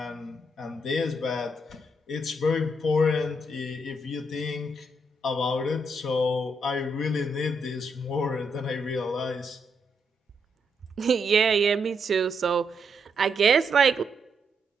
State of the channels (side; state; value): both; normal; correlation 0.78